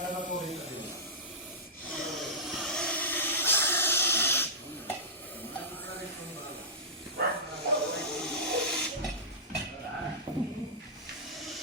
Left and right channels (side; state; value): both; normal; correlation -0.15